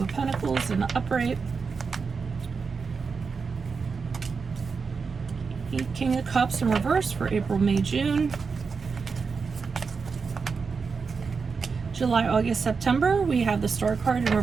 of Pentacles in the upright. King of Cups in reverse for April, May, June. July, August, September, we have the Star card in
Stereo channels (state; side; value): quieter; left; 5.1 dB